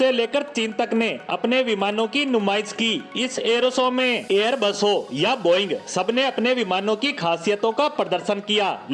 लेकर चीन तक ने अपने विमानों की नुमाइश की। इस एरो शो में एयरबस हो या बोइंग, सबने अपने विमानों की खासियतों का प्रदर्शन किया,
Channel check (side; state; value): both; identical; correlation 1.00